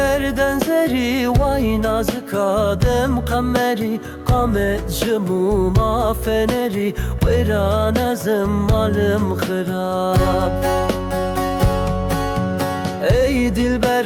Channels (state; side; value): identical; both; correlation 1.00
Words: زری وای نازک آدم قمری قامت جموما فنری ویران ازم مالم خراب ای